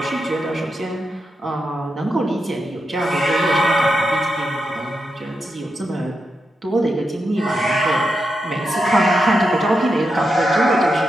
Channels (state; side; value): normal; both; correlation 0.86